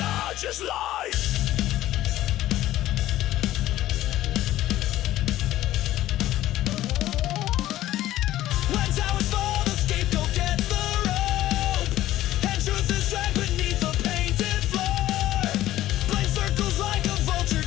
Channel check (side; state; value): right; quieter; 14.5 dB